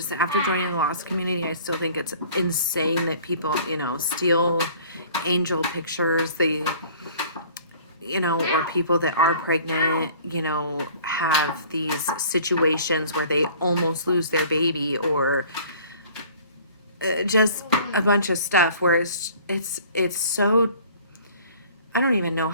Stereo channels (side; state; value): both; inverted; correlation -0.50